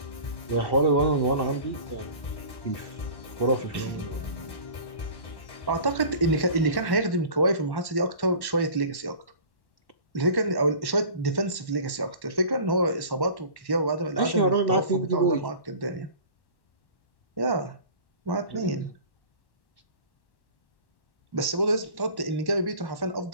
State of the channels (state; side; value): late; right; 1.1 ms